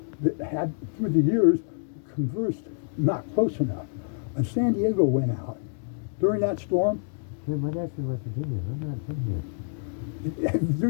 that had through the years conversed not close enough. And San Diego went out during that storm. Glenn, my dad's from West Virginia. I'm not from here. You're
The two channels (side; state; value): right; silent; 60 dB below the other